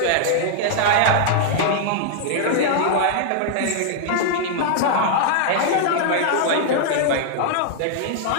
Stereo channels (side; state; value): both; different; correlation -0.01